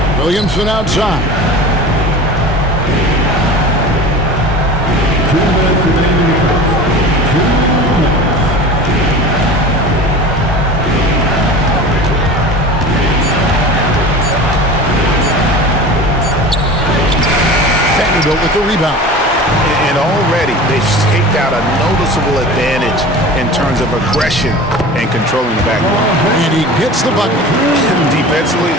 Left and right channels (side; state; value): both; normal; correlation 0.36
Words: Williamson outside. Vanderbilt with the rebound. And already they've staked out a noticeable advantage in terms of aggression and controlling the backcourt. And he gets the bucket. Defensively,